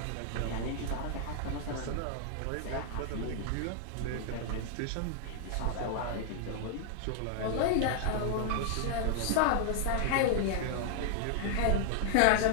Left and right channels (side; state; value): both; different; correlation 0.00